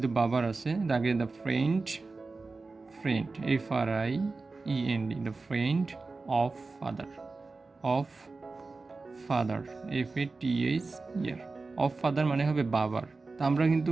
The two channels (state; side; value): quieter; left; 3.8 dB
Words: বাবার আছে আগে the friend, FRIEND, the friend of father, FATHER, of father মানে হবে বাবার। তা আমরা কিন্তু